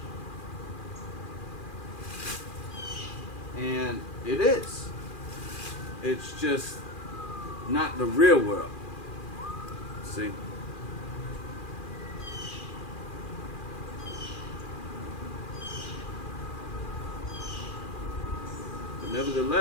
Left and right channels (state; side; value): late; right; 2.4 ms